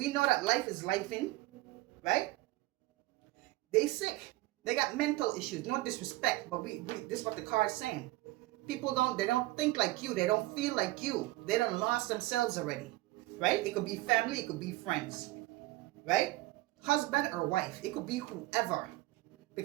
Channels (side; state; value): left; quieter; 18.6 dB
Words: know that life is lifing, right? They sick. They got mental issues. No disrespect, but this is what the card is saying. People they don't think like you. They don't feel like you. They done lost themselves already, right? It could be family. It could be friends, right? Husband or wife. It could be whoever.